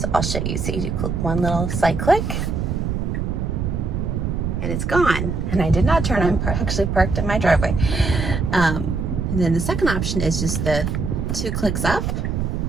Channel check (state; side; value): noise; right; rumble, 1 dB below the sound